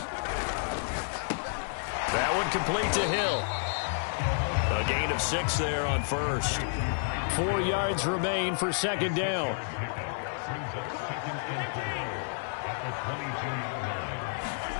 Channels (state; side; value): silent; right; digital silence